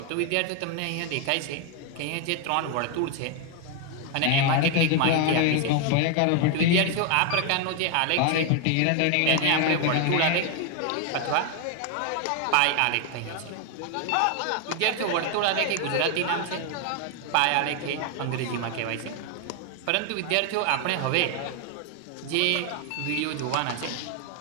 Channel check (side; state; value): both; different; correlation 0.01